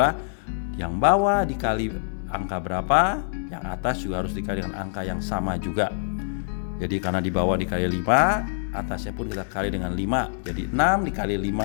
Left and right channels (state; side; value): silent; right; 62 dB below the other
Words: yang bawah dikali angka berapa, yang atas juga harus dikali dengan angka yang sama juga. Jadi karena di bawah dikali 5, atasnya pun kita kali dengan 5. Jadi 6 dikali